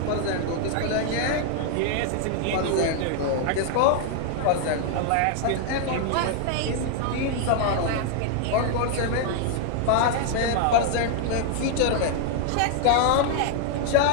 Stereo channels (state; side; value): different; both; correlation 0.00